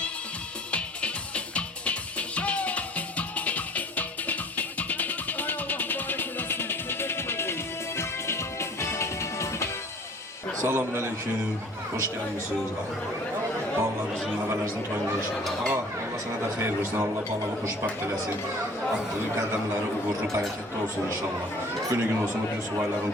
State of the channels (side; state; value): both; normal; correlation 0.50